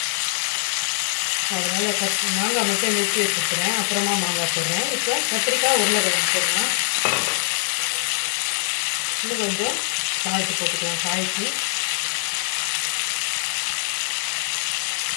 அதனால் மாங்காய் மட்டும் நிறுத்தி வச்சுக்கிறேன். அப்புறமா மாங்காய் போடுறேன். இப்போ கத்திரிக்காய், உருளைக்கிழங்கு போடுறேன். இன்னும் கொஞ்சம் சால்ட்டு போட்டுக்கலாம். காய்க்கு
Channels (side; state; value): right; silent; 63 dB below the other